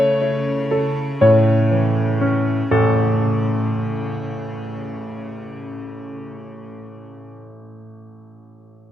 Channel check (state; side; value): normal; both; correlation 0.83